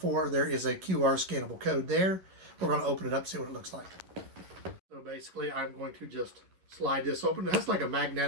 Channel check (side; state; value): left; late; 11 ms